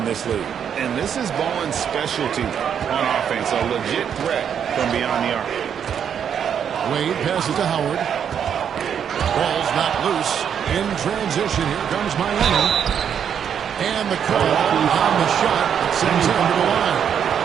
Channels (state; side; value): quieter; left; 8.2 dB